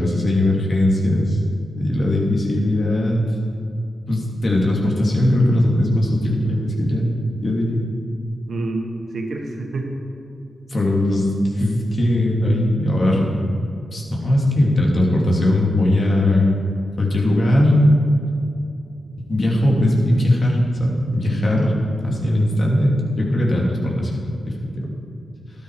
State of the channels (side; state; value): both; normal; correlation 0.89